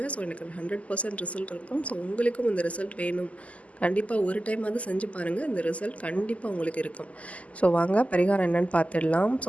ஸோ எனக்கு 100% ரிசல்ட் இருக்கும். ஸோ உங்களுக்கும் இந்த ரிசல்ட் வேணும், கண்டிப்பாக ஒரு டைமாவது செஞ்சு பாருங்கள். இந்த ரிசல்ட் கண்டிப்பாக உங்களுக்கு இருக்கும். ஸோ வாங்க பரிகாரம் என்னென்னு பார்த்துடலாம்.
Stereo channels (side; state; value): right; late; 0.068 ms